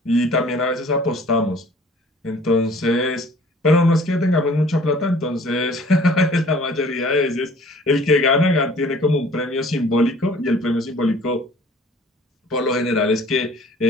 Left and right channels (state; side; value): normal; both; correlation 0.51